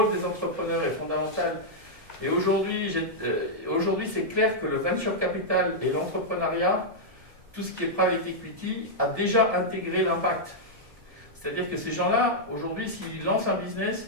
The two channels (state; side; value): late; left; 1.7 ms